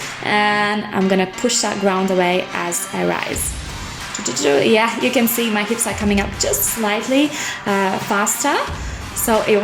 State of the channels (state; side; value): identical; both; correlation 1.00